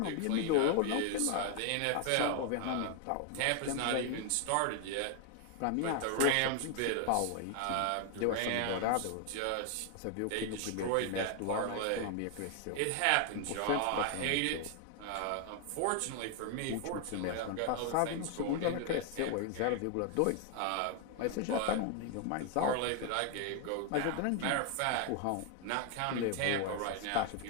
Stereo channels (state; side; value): different; both; correlation 0.00